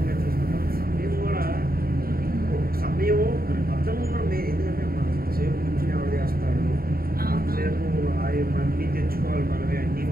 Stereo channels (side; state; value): left; late; 0.43 ms